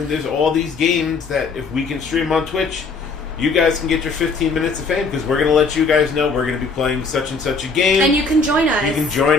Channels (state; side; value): quieter; right; 4.3 dB